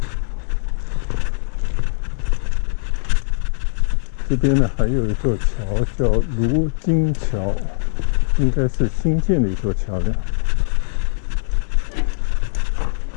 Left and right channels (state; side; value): silent; right; 66 dB below the other